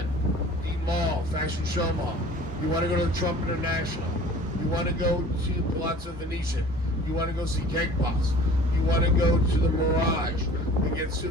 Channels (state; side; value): normal; both; correlation 0.46